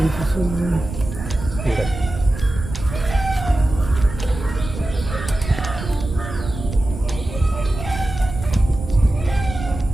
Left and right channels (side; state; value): right; noise; rumble, 9 dB below the sound